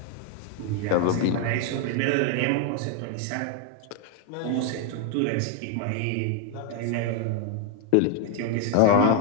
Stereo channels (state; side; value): different; both; correlation 0.01